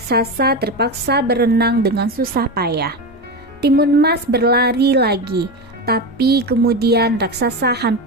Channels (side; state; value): both; normal; correlation 0.19